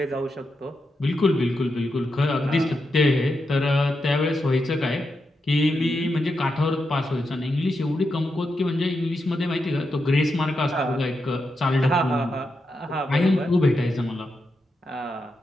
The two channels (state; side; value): normal; both; correlation 0.86